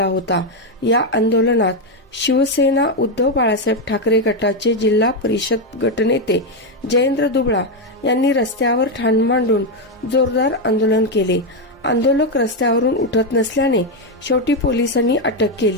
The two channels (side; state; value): both; normal; correlation 0.06